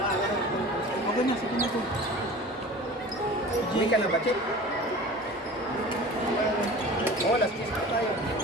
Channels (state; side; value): normal; both; correlation 0.39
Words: Okay na. Sige na po. Hindi ka na ba, Chef? Oo, last kiss na tayo.